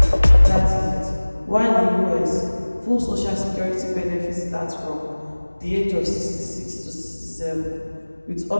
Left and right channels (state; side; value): inverted; both; correlation -1.00